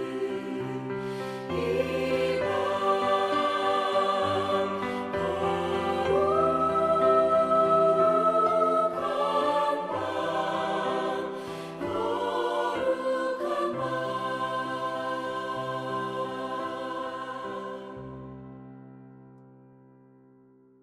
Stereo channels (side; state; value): both; identical; correlation 1.00